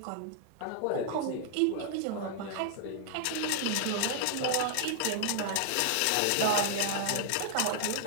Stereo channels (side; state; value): both; different; correlation 0.00